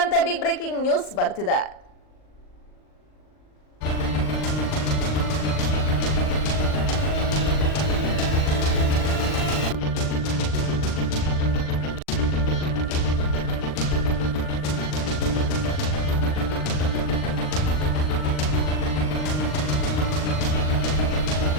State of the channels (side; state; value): right; late; 39 ms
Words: ಬಿಗ್ ಬ್ರೇಕಿಂಗ್ ನ್ಯೂಸ್ ಬರ್ತಿದೆ.